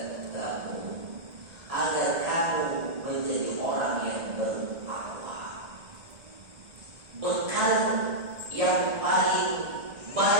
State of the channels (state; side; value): late; left; 1.7 ms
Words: agar kamu menjadi orang yang bertakwa. Bekal yang paling